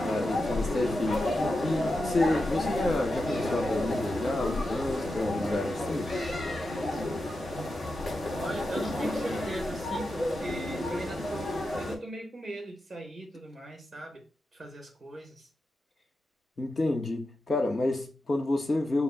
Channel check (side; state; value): both; normal; correlation 0.89